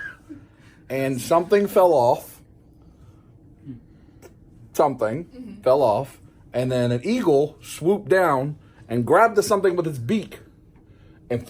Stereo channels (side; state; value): both; identical; correlation 1.00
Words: and something fell off, fell off, and then an eagle swooped down and grabbed the something with its beak and